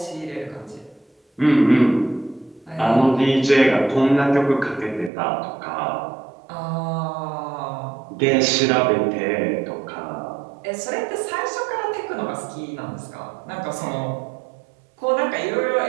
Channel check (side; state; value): left; drops out; at 5.1 s